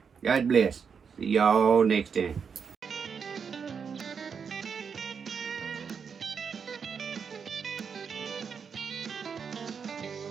God bless. See y'all next time.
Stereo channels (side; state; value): left; quieter; 6.3 dB